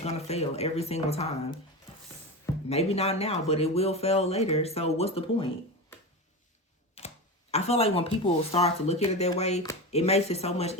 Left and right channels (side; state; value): both; normal; correlation 0.23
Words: going to fail every single time. Maybe not now, but it will fail later. So what's the point? I feel like when people start to look at it that way, it makes it so much